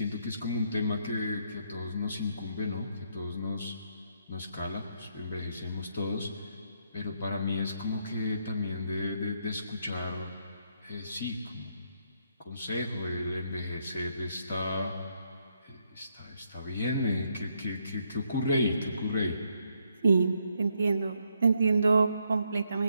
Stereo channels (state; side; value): inverted; both; correlation -0.75